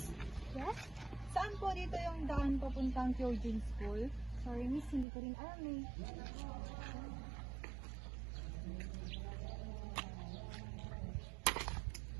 Yes? Saan po dito yung daan papuntang Eugene School? Sorry, miss, hindi ko rin alam eh.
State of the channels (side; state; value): left; drops out; at 5.1 s